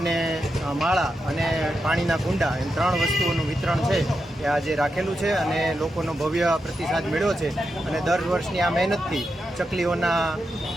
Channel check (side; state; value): both; normal; correlation 0.87